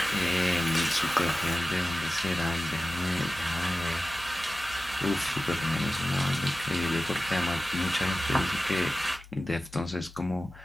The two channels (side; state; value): both; normal; correlation 0.95